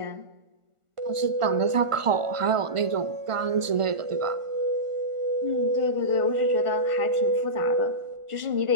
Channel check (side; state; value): left; late; 1.5 ms